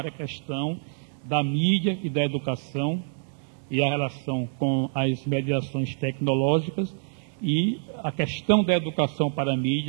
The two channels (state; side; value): silent; left; digital silence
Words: a questão da mídia e da educação e a relação com as mediações tecnológicas e a questão da educação para a